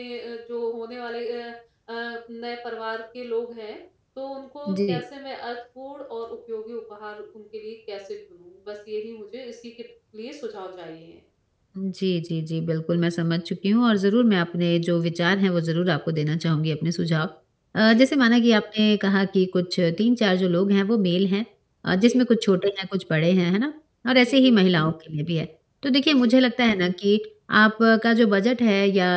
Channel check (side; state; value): both; identical; correlation 1.00